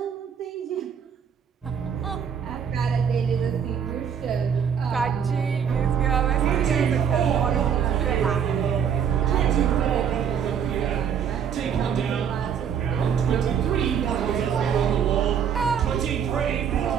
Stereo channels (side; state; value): left; quieter; 7.8 dB